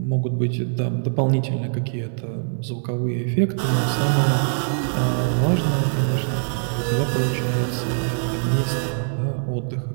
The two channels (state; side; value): silent; left; 64 dB below the other